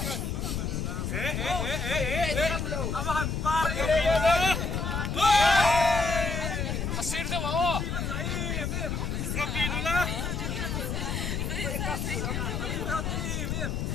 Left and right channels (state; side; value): noise; left; rumble, 2 dB below the sound